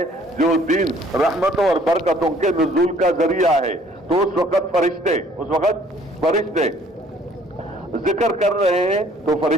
जो दीन रहमतों और बरकतों के नुज़ूल का जरिया है। तो उस वक्त फरिश्ते जिक्र कर रहे हैं तो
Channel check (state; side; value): normal; both; correlation 0.58